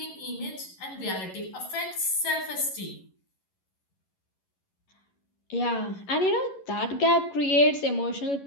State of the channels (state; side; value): late; right; 11 ms